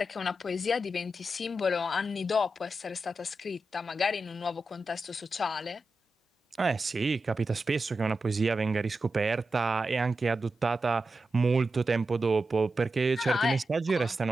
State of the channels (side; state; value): both; normal; correlation 0.90